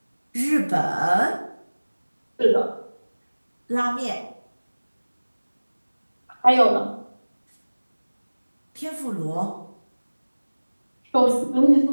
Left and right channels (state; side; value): inverted; both; correlation -1.00